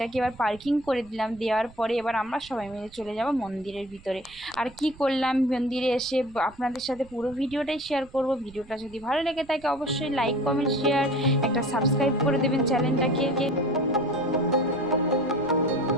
এবার পার্কিং করে দিলাম, দেওয়ার পরে এবার আমরা সবাই মিলে চলে যাব মন্দিরের ভিতরে। আর কি করলাম মন্দিরে এসে আপনাদের সাথে পুরো ভিডিওটাই শেয়ার করব। ভিডিওটা যদি ভালো লেগে থাকে অবশ্যই লাইক, কমেন্ট, শেয়ার, একটা সাবস্ক্রাইব করে দেবেন চ্যানেলটাকে।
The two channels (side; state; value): right; noise; rumble, 23 dB below the sound